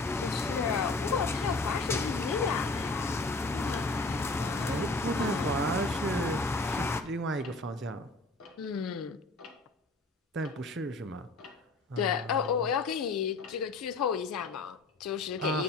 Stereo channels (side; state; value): right; quieter; 3.2 dB